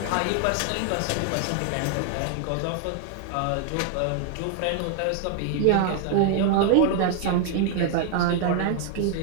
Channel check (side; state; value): both; different; correlation 0.00